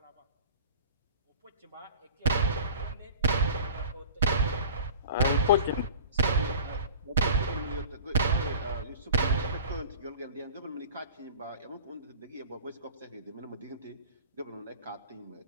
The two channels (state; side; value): inverted; both; correlation -0.41